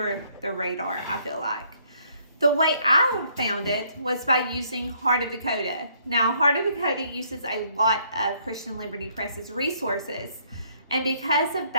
the radar, I feel like. The way I found it was by using Heart of Dakota. Now, Heart of Dakota uses a lot of Christian Liberty Press's resources. And because of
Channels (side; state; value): both; inverted; correlation -0.66